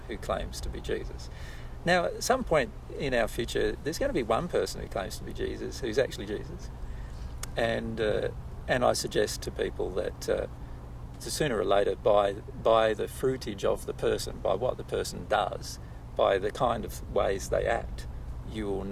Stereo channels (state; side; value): identical; both; correlation 1.00